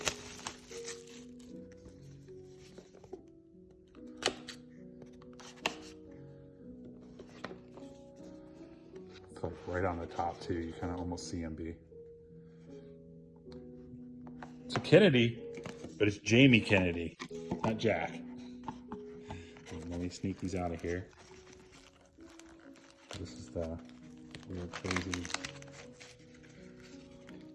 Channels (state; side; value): identical; both; correlation 1.00